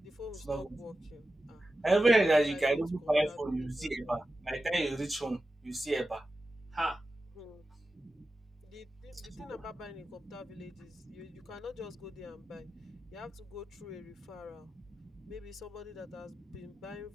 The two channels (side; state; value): both; normal; correlation 0.93